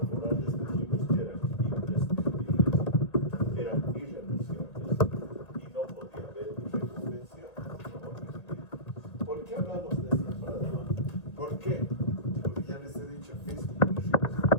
dijimos que eran imprescindibles, eran irrenunciables y no podía haber reconvención. ¿Por qué hablamos de esta palabra? ¿Por qué? Porque ya les he dicho, es muy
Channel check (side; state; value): right; late; 1.9 ms